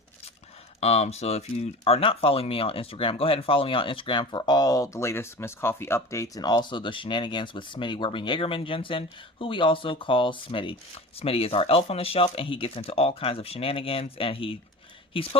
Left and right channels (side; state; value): both; normal; correlation 0.35